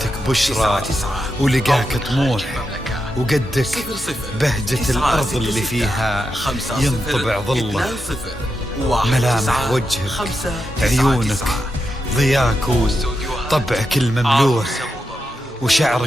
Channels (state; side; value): normal; both; correlation 0.86